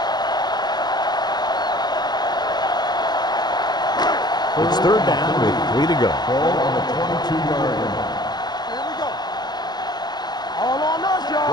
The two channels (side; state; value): right; late; 0.20 ms